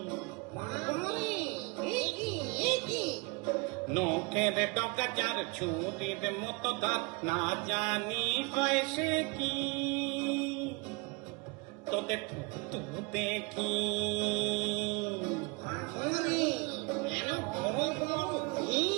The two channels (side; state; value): left; quieter; 28.7 dB